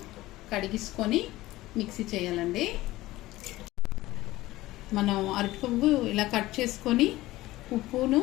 కడిగించుకొని మిక్సీ చేయాలండి. మనం అరటి పువ్వు ఇలా కట్ చేసుకొని ఉప్పును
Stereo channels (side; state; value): right; quieter; 17.4 dB